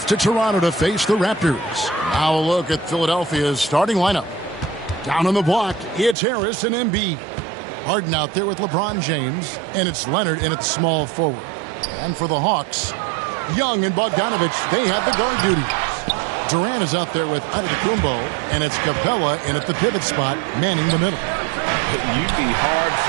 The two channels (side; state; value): left; drops out; at 6.2 s